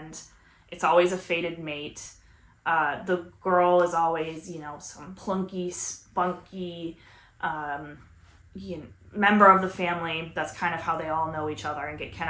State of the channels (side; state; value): both; identical; correlation 1.00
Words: it's always a fated mate. The girl is always, some plunky, spunky, member of the family. That's kind of how they all know each other and get